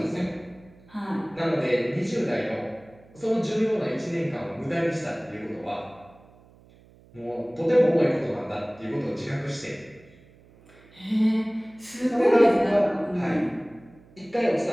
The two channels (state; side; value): noise; right; hum, 26 dB below the sound